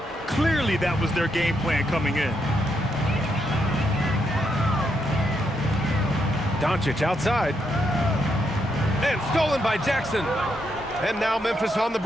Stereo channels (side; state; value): both; normal; correlation 0.79